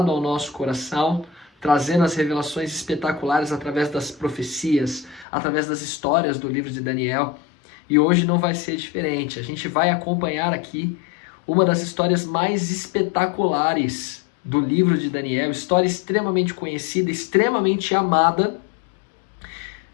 ao nosso coração, trazendo as revelações espetaculares através das profecias, através das histórias do livro de Daniel. E hoje não vai ser diferente. A gente vai acompanhar aqui uma das histórias mais espetaculares do livro de Daniel, história extremamente conhecida, extremamente amada.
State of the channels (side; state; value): right; drops out; at 5.2 s